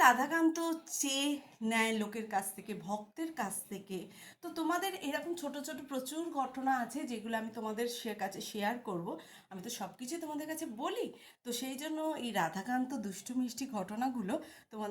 রাধাকান্ত চেয়ে নেয় লোকের কাছ থেকে, ভক্তের কাছ থেকে। তো তোমাদের এরকম ছোট ছোট প্রচুর ঘটনা আছে, যেগুলো আমি তোমাদের কাছে শেয়ার করব। আমি তো সব কিছুই তোমাদের কাছে বলি। তো সেই জন্য এই রাধাকান্ত দুষ্টু মিষ্টি ঘটনাগুলো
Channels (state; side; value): identical; both; correlation 1.00